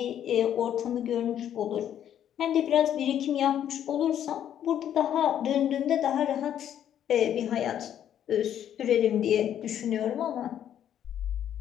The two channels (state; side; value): quieter; right; 10.2 dB